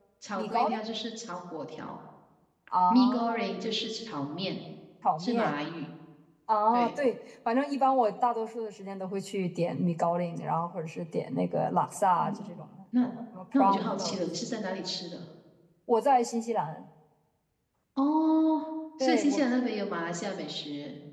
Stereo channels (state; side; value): identical; both; correlation 1.00